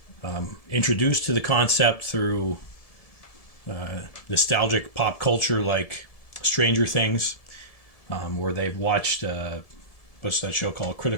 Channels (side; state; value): right; late; 1.7 ms